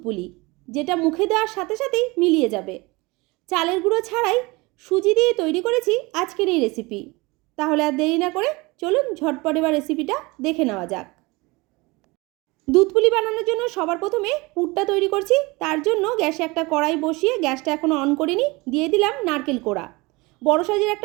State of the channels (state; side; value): quieter; left; 24.2 dB